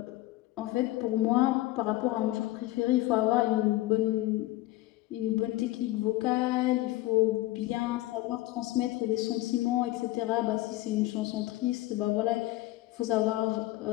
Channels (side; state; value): right; quieter; 17.5 dB